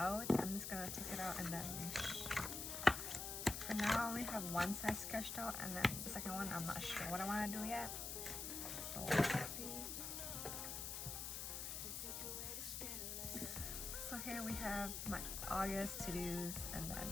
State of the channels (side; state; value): left; noise; hiss, 4 dB below the sound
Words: I'm just gonna take it out and then for now I only have one side sketched out, and then the second one I'm not sure what I want to do yet. So let's see. So here we have my August to-dos and